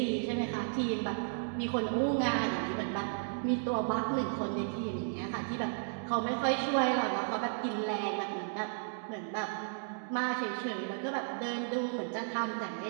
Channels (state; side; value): silent; left; digital silence